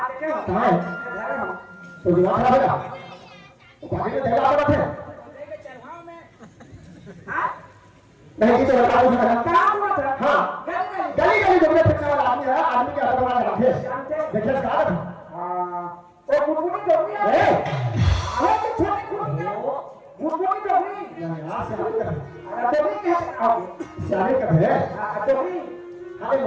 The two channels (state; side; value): identical; both; correlation 1.00